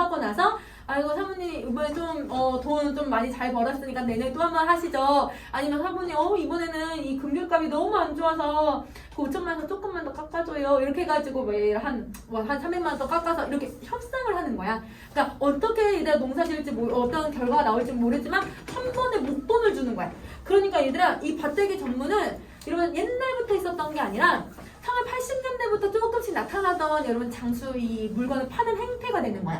나서 아이고 사모님 이번에 좀 돈 좀 많이 잘 벌었으니까 내년에 또 한 번 하시죠. 아니면 사모님 이번에는 이 금귤값이 너무 안 좋아서 그 5천만 원 조금만 더 깎아줘요. 이렇게 해가지고 한 300만 원 더 깎아서 이렇게 협상을 하는 거야. 그러니까 어떻게 얘들아 농사 지을지 어떤 결과가 나올지 모르지만 한 번에 목돈을 주는 거야. 그러니까 얘들아 이 밭대기 전문은 이런 옛날부터 있었던 게 아니라 1980년대부터 조금씩 나타나던 여러분 장수 이 물건을 파는 행태가 되는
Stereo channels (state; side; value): identical; both; correlation 1.00